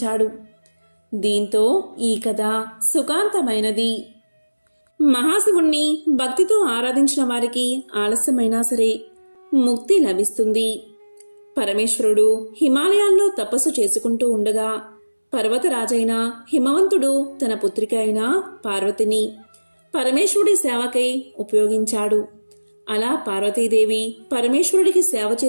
దీంతో ఈ కథ సుఖాంతమైనది. మహాశివుణ్ణి భక్తితో ఆరాధించిన వారికి ఆలస్యమైనా సరే ముక్తి లభిస్తుంది. పరమేశ్వరుడు హిమాలయాల్లో తపస్సు చేసుకుంటూ ఉండగా పర్వతరాజైన హిమవంతుడు తన పుత్రిక అయిన పార్వతిని పరమేశ్వరుడి సేవకై ఉపయోగించాడు. అలా పార్వతీదేవి పరమేశ్వరుడికి సేవ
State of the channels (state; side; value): inverted; both; correlation -1.00